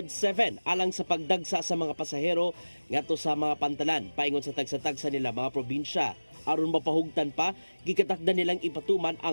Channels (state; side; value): inverted; both; correlation -1.00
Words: 7 alang sa pagdagsa sa mga pasahero ngadto sa mga pantalan paingon sa tagsa-tagsa nila mga probinsya. Aron mapahugtan pa, gikatakda nilang ipatuman